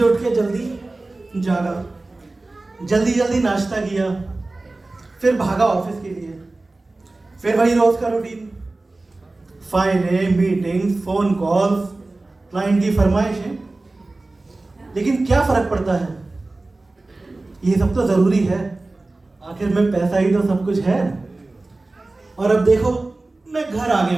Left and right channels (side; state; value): left; quieter; 3.1 dB